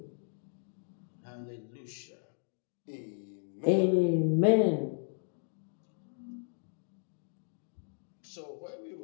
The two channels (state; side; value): silent; right; digital silence